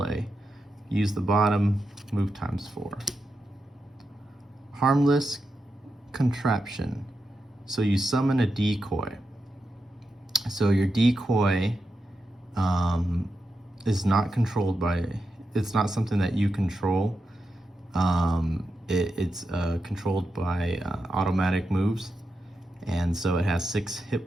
Use the bottom, move times 4. Harmless Contraption. So you summon a decoy. So your decoy is not controlled by, it's not something that you control. It's controlled by automatic moves, and so it has 6 hit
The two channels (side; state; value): both; normal; correlation 0.87